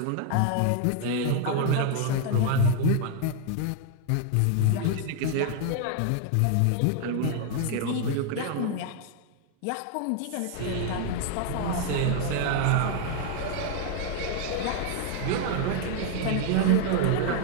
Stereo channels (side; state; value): both; different; correlation 0.00